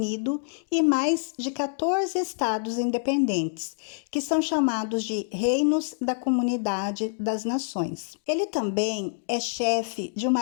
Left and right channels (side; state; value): right; silent; digital silence